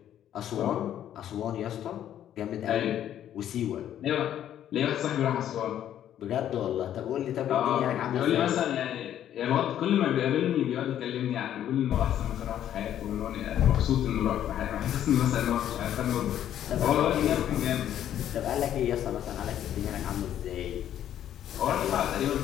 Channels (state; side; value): quieter; right; 10.9 dB